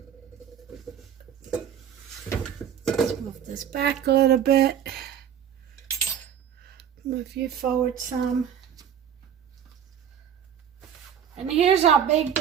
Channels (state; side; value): quieter; left; 8.9 dB